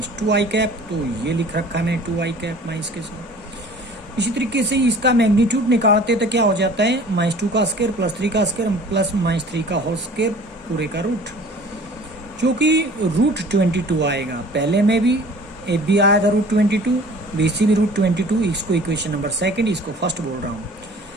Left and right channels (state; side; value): normal; both; correlation 0.47